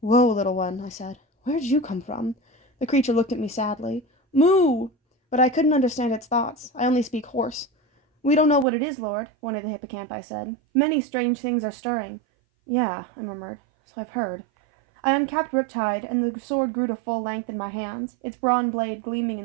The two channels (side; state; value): left; drops out; at 8.7 s